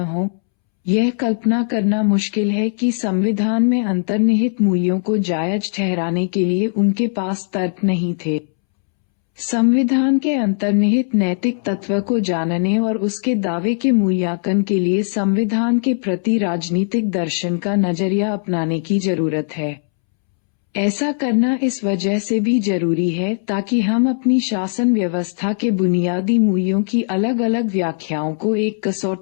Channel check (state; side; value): silent; right; 66 dB below the other